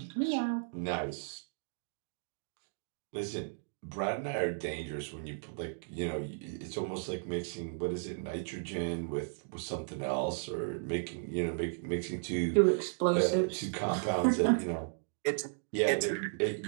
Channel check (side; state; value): left; silent; digital silence